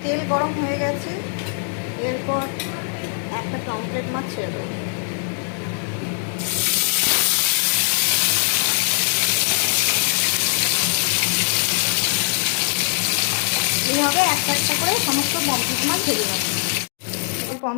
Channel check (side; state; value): right; silent; digital silence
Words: তেল গরম হয়ে গেছে, এরপর একটা পমফ্লেট মাছ ছেড়ে দেবো। এইভাবে একটা একটা করে সমস্ত পমফ্লেট মাছ ভেজে নেব।